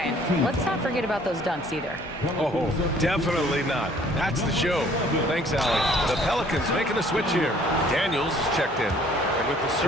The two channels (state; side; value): normal; both; correlation 0.57